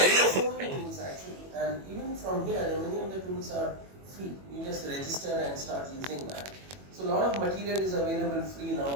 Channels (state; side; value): late; left; 21 ms